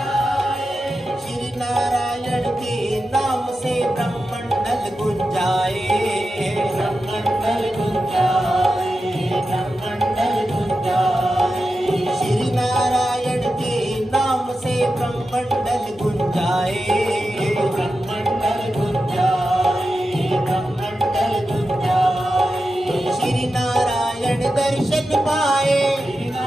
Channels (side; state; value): both; normal; correlation 0.90